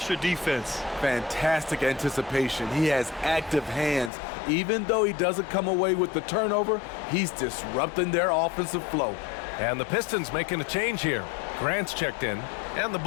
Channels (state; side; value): drops out; right; at 4.1 s